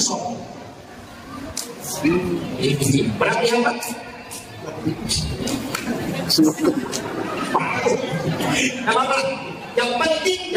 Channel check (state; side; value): identical; both; correlation 1.00